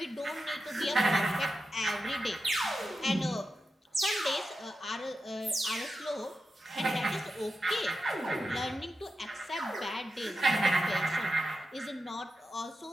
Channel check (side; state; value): both; normal; correlation 0.90